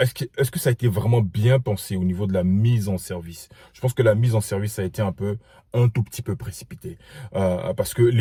que ça a été vraiment bien pensé au niveau de la mise en service? Je pense que la mise en service a été un tout petit peu précipitée. Parce que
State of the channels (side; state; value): both; identical; correlation 1.00